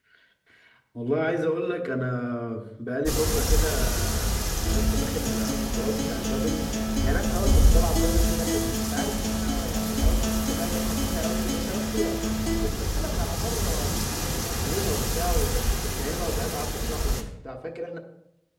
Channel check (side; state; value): both; identical; correlation 1.00